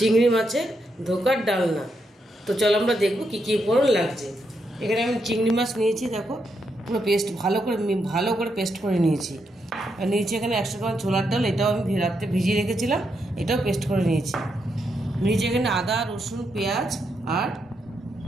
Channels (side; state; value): both; normal; correlation 0.81